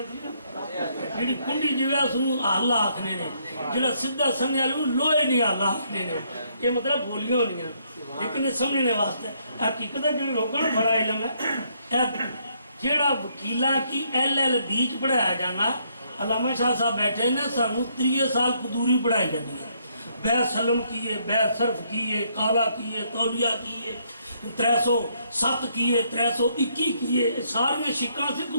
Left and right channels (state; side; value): inverted; both; correlation -0.71